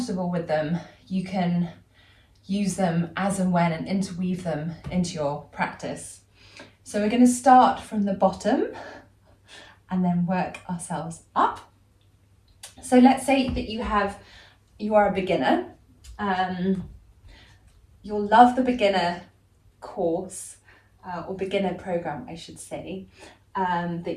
with them, you can use them as and when and interweave them into your practice. So we're going to start from the bottom and then work ourselves up. So let's say that you are a beginner. You'll love the beginner course or beginner program, I should say,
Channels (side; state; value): both; identical; correlation 1.00